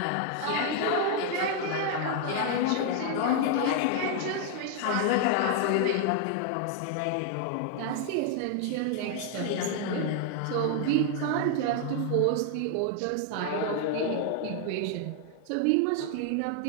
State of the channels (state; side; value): different; both; correlation 0.00